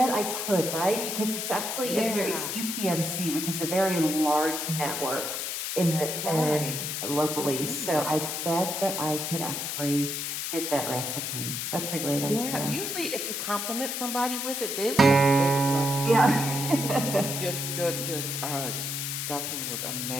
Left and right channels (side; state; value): left; noise; hiss, 3 dB below the sound